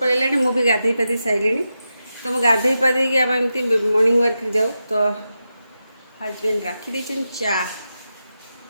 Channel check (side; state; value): both; inverted; correlation -0.89